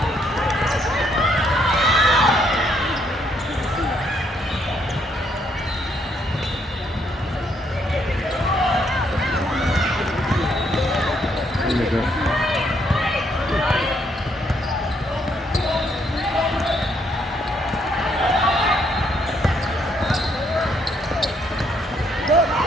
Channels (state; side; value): normal; both; correlation 0.72